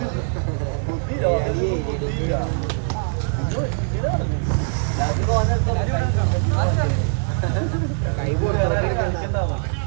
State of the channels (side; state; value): left; silent; 57 dB below the other